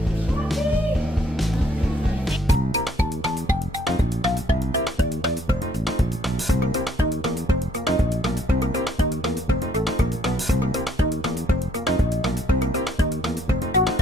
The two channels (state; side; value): normal; both; correlation 0.65